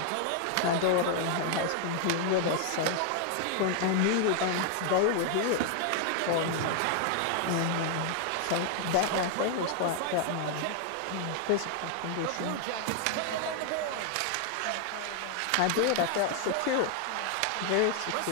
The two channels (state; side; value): different; both; correlation 0.00